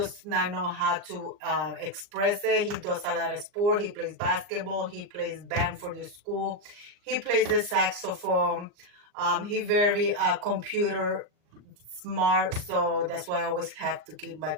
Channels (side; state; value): left; late; 39 ms